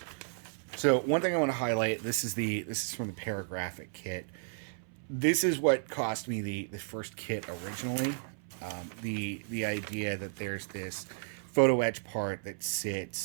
so one thing I want to highlight. This is from the Paragraphic kit. This is what cost me the first kit originally. The idea that there's this photo etch part that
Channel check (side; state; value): left; silent; 56 dB below the other